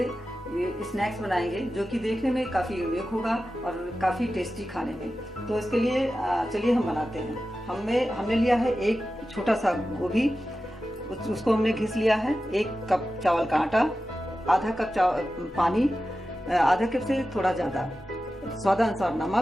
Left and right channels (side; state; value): both; normal; correlation 0.93